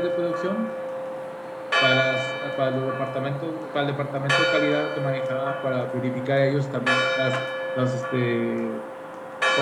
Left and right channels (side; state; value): both; identical; correlation 1.00